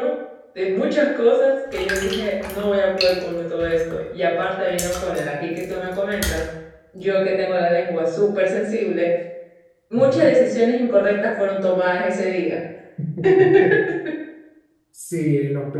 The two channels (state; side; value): identical; both; correlation 1.00